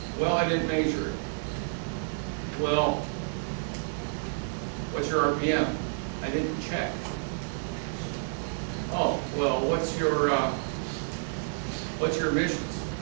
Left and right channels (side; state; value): left; silent; 58 dB below the other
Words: Well, I didn't measure it. Well, what's your RPM? I didn't check. Oh, well, what's your emissions?